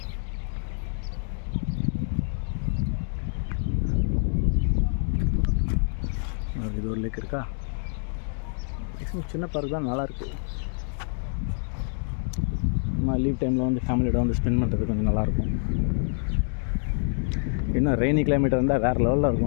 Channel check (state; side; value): silent; right; 60 dB below the other